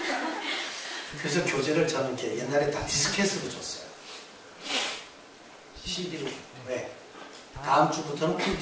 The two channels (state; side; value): identical; both; correlation 1.00